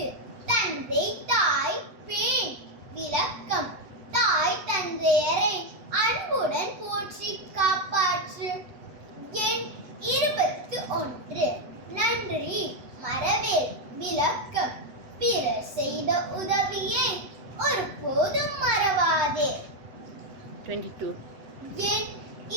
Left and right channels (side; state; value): left; late; 8.2 ms